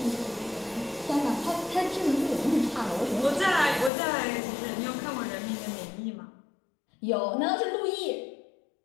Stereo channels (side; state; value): right; drops out; at 3.9 s